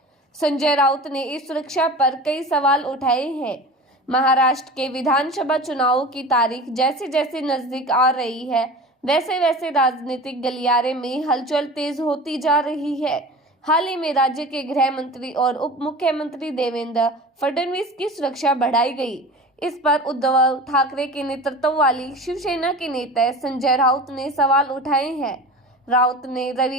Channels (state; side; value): normal; both; correlation 0.35